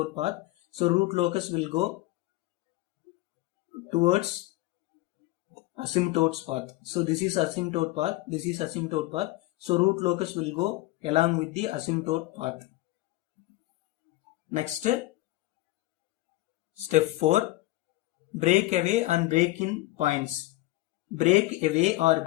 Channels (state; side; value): quieter; right; 18.6 dB